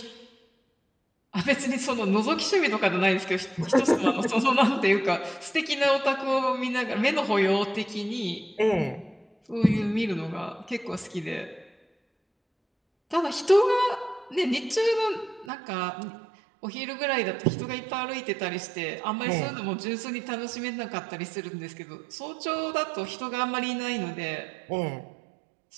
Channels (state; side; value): drops out; left; at 15.5 s